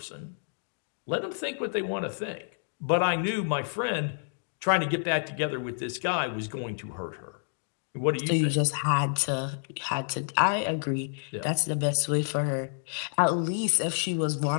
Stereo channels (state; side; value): silent; right; digital silence